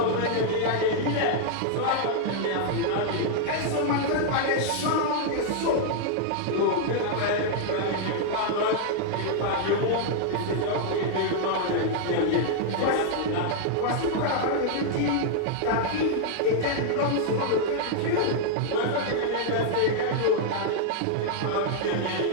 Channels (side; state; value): both; different; correlation -0.01